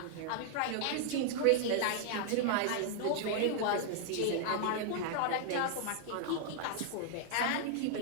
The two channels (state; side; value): different; both; correlation -0.01